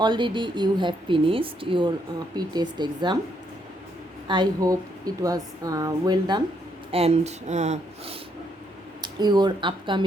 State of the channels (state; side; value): normal; both; correlation 0.74